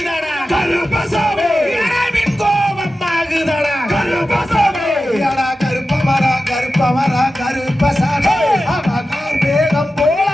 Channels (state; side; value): normal; both; correlation 0.93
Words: கருப்பசாமி மின் கோபம் ஆகுதடா கருப்பசாமி கருப்பமரா கருப்பசாமி அவகார் வேகம் போல